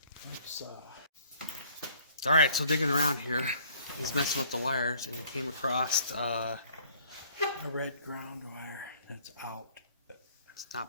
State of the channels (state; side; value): inverted; both; correlation -0.58